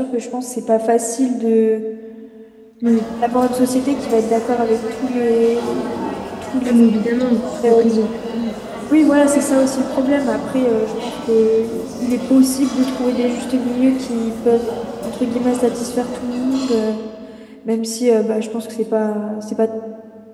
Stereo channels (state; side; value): identical; both; correlation 1.00